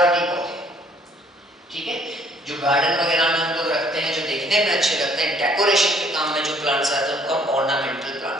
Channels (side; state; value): both; normal; correlation 0.61